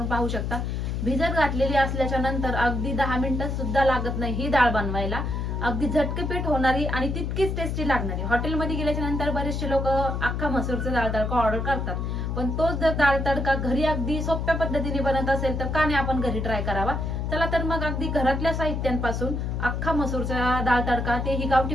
पाहू शकता. भिजत घातलेली असल्याच्या नंतर अगदी 10 मिनिटं सुद्धा लागत नाही ही डाळ बनवायला. अगदी झटकेपीठ होणारी आणि तितकीच टेस्टी लागणारी. हॉटेलमध्ये गेल्याच्या नंतर बरेचसे लोक अख्खा मसूरचा डाळ तडका ऑर्डर करतात, पण तोच जर डाळ तडका घरी अगदी सोप्या पद्धतीने बनत असेल तर का नाही आपण घरी ट्राय करावा. चला तर मग अगदी घरातल्या साहित्यांपासून अख्खा मसूरचा डाळ तडका तेही गावठी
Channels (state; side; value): noise; left; hum, 2 dB below the sound